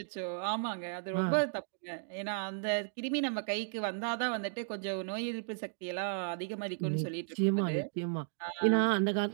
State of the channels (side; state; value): left; silent; digital silence